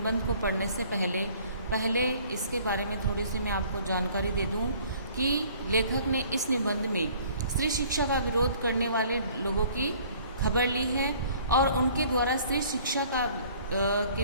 को पढ़ने से पहले इसके बारे में थोड़ी सी मैं आपको जानकारी दे दूं कि लेखक ने इस निबंध में स्त्री शिक्षा का विरोध करने वाले लोगों की खबर ली है और उनके द्वारा स्त्री शिक्षा के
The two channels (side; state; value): both; inverted; correlation -0.55